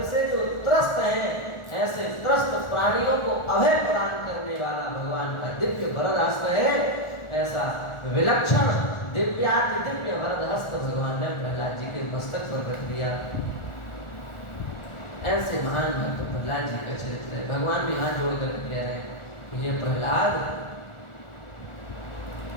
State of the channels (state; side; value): late; right; 1.4 ms